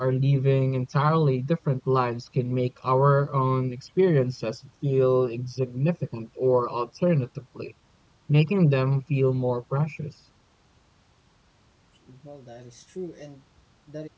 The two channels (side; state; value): both; identical; correlation 1.00